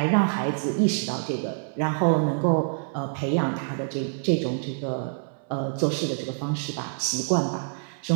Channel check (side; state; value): left; silent; digital silence